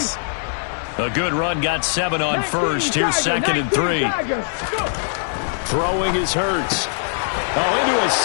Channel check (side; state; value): right; silent; digital silence